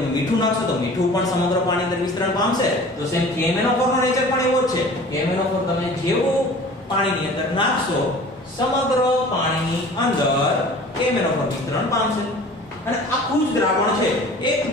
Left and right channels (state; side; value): normal; both; correlation 0.44